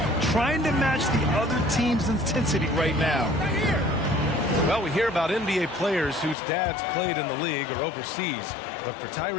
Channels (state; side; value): drops out; right; at 6.4 s